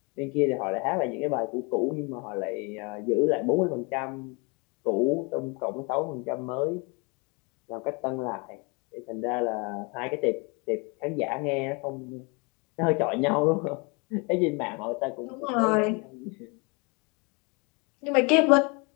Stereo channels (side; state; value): right; quieter; 30.8 dB